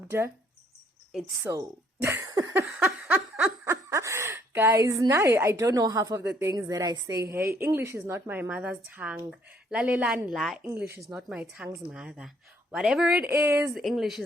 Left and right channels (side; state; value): both; normal; correlation 0.65